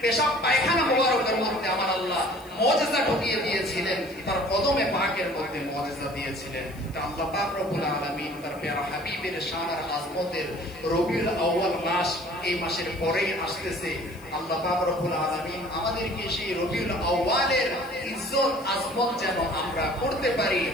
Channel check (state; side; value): noise; left; hiss, 25 dB below the sound